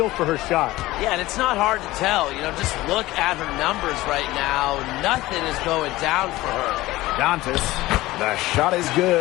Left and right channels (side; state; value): right; quieter; 18.0 dB